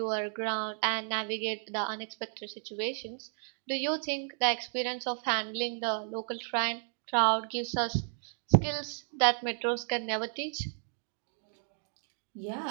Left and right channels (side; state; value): left; silent; 56 dB below the other